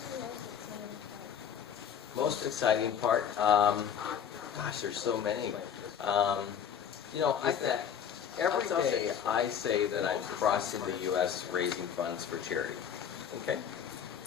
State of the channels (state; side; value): quieter; right; 8.4 dB